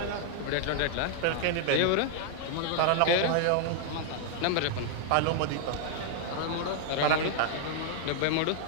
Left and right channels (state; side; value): different; both; correlation 0.00